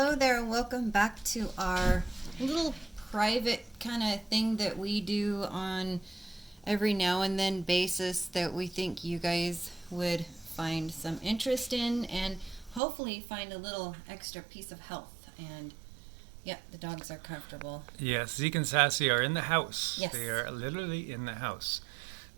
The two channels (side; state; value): left; drops out; at 12.8 s